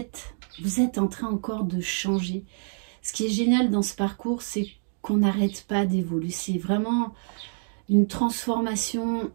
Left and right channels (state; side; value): silent; left; digital silence